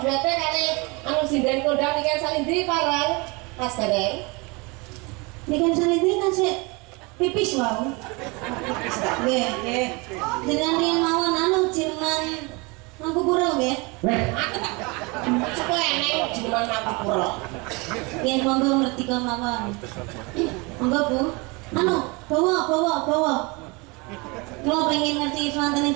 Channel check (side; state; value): left; quieter; 27.6 dB